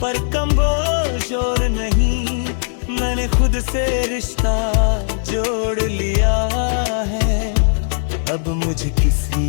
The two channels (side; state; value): right; silent; digital silence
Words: पर कमबोश और नहीं। मैंने खुद से रिश्ता जोड़ लिया है, अब मुझे किसी